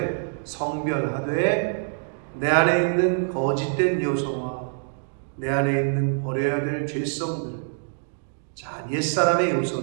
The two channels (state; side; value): silent; left; digital silence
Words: 성별하되 내 안에 있는 거짓된 요소와 내 안에 있는 버려야 될 죄성들, 자, 옛사람의